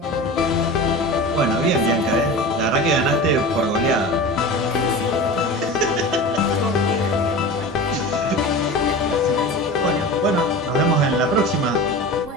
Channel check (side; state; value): both; normal; correlation 0.32